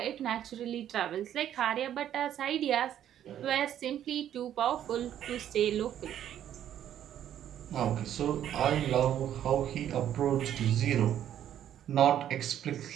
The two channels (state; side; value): quieter; left; 10.7 dB